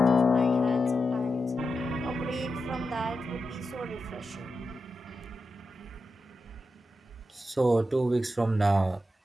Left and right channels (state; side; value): normal; both; correlation 0.89